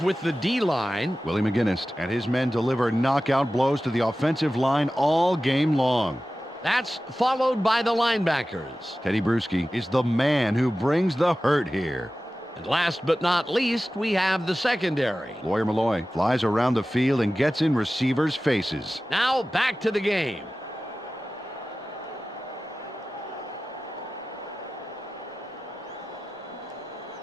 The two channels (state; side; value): normal; both; correlation 0.95